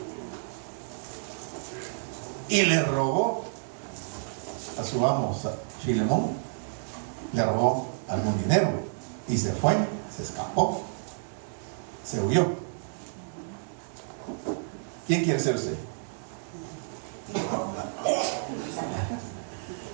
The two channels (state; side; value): silent; left; digital silence